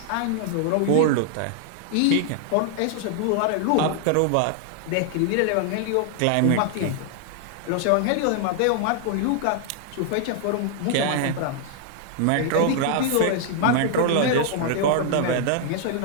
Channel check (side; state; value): both; different; correlation 0.00